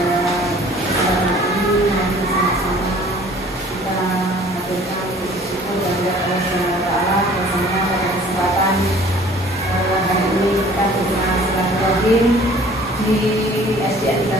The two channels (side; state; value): both; normal; correlation 0.51